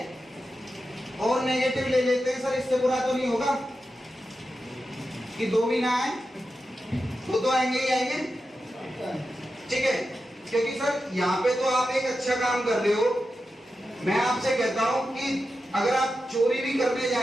और नेगेटिव ले लेते हैं सर, इससे बुरा तो नहीं होगा कि 2 भी ना आए, तो आएंगे ही आएंगे। ठीक है, क्योंकि सर यहाँ पे तो आप एक अच्छा काम कर रहे हो। मैं आपसे कहता हूं कि अगर आप चोरी भी करने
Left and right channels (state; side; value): normal; both; correlation 0.90